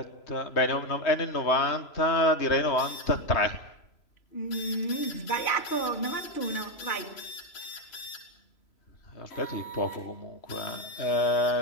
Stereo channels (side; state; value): right; late; 3.0 ms